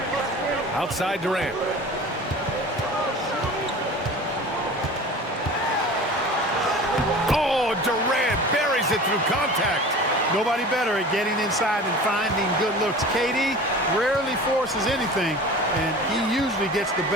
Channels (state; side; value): normal; both; correlation 0.38